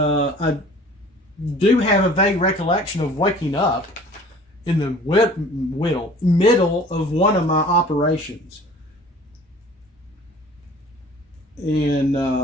do have a vague recollection of waking up in the middle of one of my operations. And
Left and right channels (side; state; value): both; normal; correlation 0.48